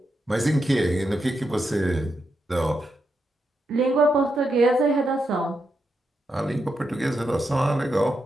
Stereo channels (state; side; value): normal; both; correlation 0.84